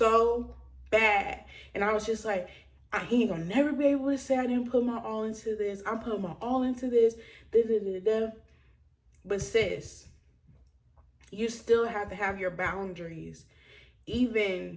bad. And I was just like, he ain't gonna never be able to say I didn't put my all into this. I'm putting my all into this. Da, da, da, da. But sis, you still have to have your boundaries.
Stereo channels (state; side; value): identical; both; correlation 1.00